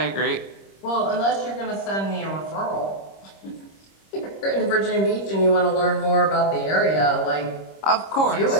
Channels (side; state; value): right; late; 26 ms